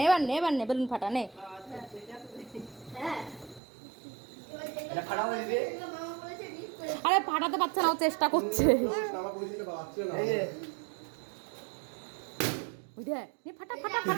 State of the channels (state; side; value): drops out; left; at 3.6 s